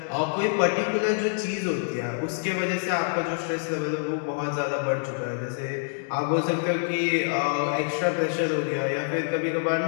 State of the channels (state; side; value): silent; right; digital silence